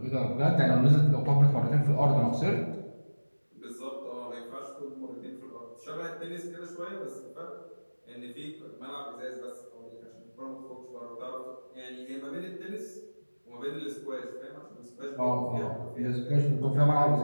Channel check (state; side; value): inverted; both; correlation -1.00